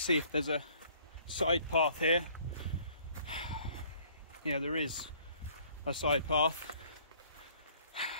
if there's a side path here. Yeah, there is a side path,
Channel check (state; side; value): inverted; both; correlation -0.58